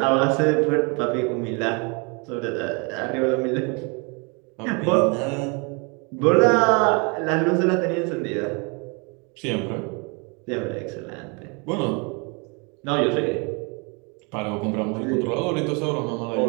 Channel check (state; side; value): quieter; left; 32.3 dB